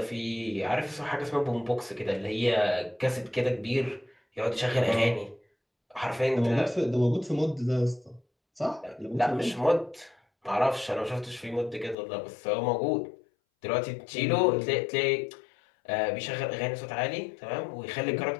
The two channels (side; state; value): right; drops out; at 12.0 s